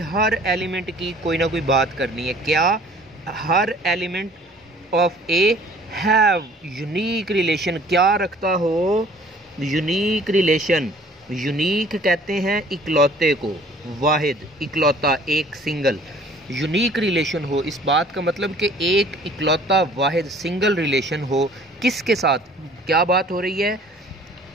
हर एलिमेंट की कोई ना कोई बात करनी है। क्या? हर element of A have unique relation. क्या रखता हो? Unique relation. यूनिक कहते हैं इकलौते को, वाहिद, इकलौता, एक, सिंगल। यूनिक रिलेशन हो, इस बात का मतलब कि एक इकलौता वाहिद सिंगल रिलेशन हो। किसके साथ? क्या बात हो रही है?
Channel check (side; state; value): both; normal; correlation 0.52